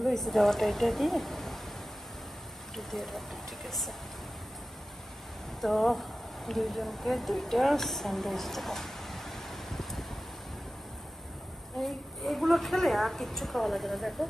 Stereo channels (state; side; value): normal; both; correlation 0.95